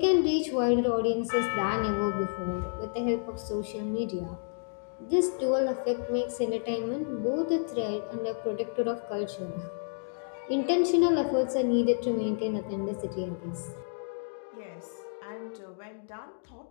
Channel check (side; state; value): right; silent; digital silence